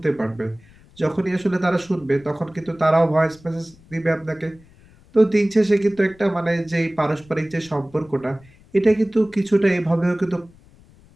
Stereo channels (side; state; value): left; noise; rumble, 27 dB below the sound